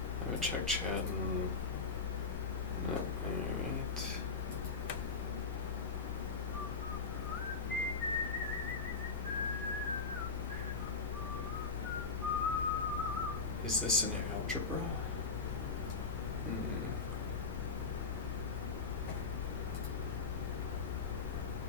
I would check chat and... No, alright. Is this an algebra?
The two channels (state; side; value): quieter; right; 4.8 dB